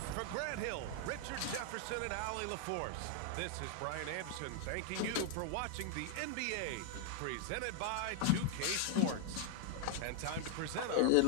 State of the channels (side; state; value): both; different; correlation 0.00